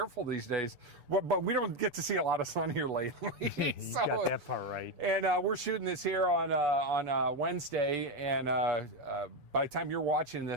these days. But we don't get to see a lot of sun here lately. You got that part right. And we're shooting this here on Wednesday. And by the time you're watching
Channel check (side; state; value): left; late; 6.9 ms